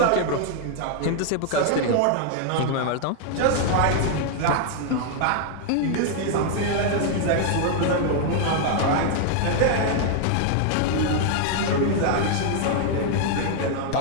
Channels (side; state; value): both; different; correlation 0.00